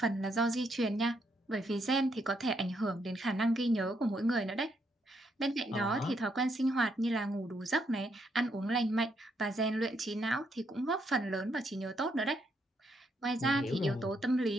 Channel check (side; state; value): both; normal; correlation 0.76